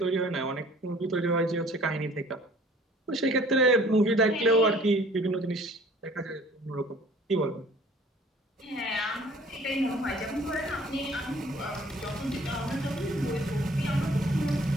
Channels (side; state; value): both; normal; correlation 0.52